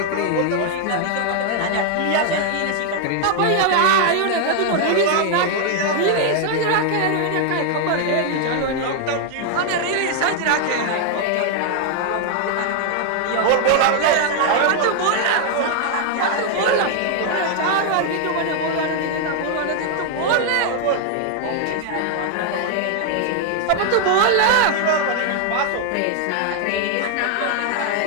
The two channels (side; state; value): both; different; correlation 0.00